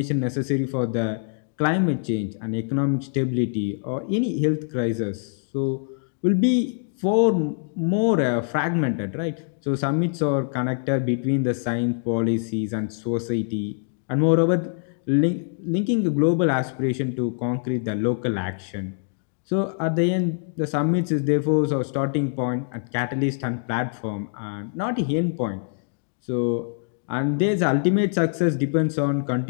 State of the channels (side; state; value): right; silent; digital silence